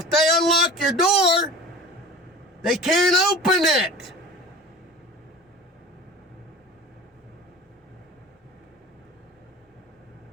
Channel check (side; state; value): both; normal; correlation 0.36